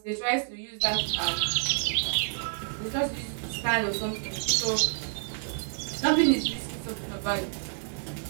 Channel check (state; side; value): silent; left; digital silence